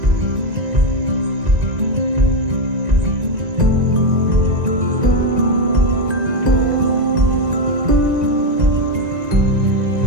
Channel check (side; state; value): left; late; 1.9 ms